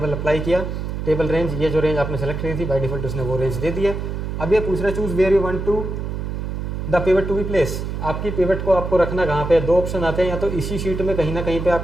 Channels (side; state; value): right; noise; hum, 4 dB below the sound